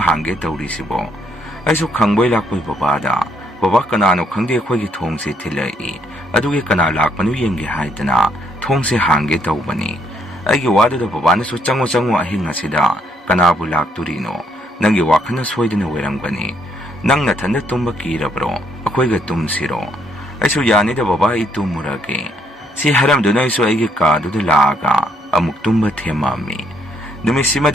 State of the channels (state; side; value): normal; both; correlation 0.71